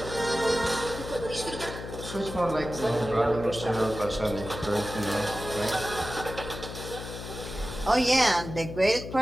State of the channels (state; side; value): noise; left; hum, 9 dB below the sound